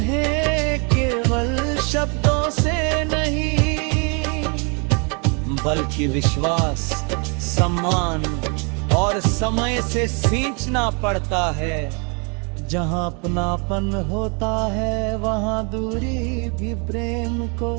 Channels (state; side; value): quieter; left; 34.9 dB